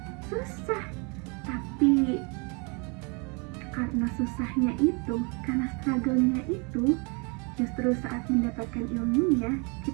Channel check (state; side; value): quieter; left; 32.5 dB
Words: susah. Tapi karena susahnya itu, karena struggle-nya itu, justru saat mendapatkan ilmunya,